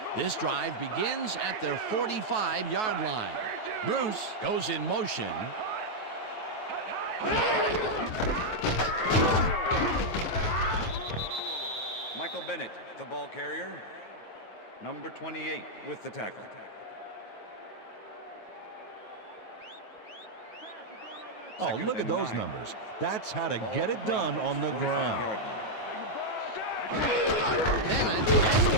This drive begins at their 45-yard line. Bruce goes in motion. Michael Bennett, the ball carrier. Number 28 with the tackle. Oh, look at those numbers. That's how to get it done on the ground. Bennett has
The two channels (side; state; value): right; late; 9.3 ms